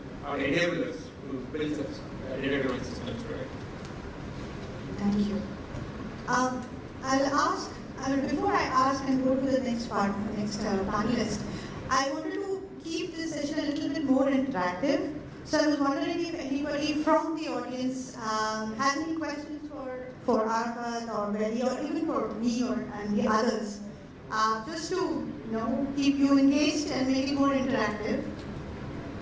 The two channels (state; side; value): identical; both; correlation 1.00